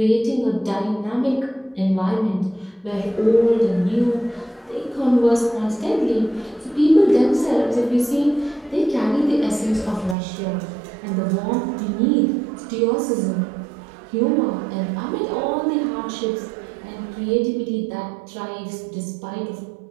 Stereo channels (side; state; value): left; drops out; at 10.2 s